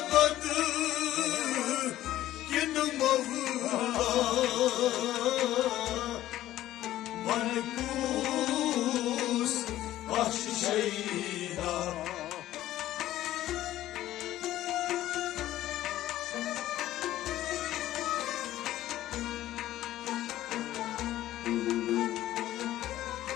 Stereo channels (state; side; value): quieter; right; 14.0 dB